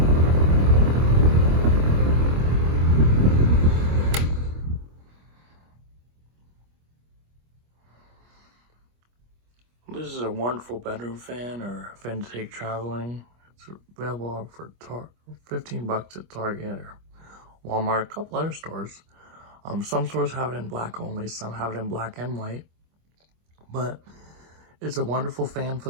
This is a wonderful bedroom fan or a fan to take traveling. It's available for $15 at Target or Walmart, a couple other stores. Some stores have it in black only, some have it in black and white. But it's a wonderful fan for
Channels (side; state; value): left; late; 25 ms